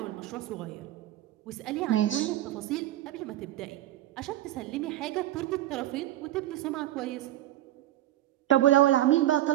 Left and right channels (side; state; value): left; quieter; 14.1 dB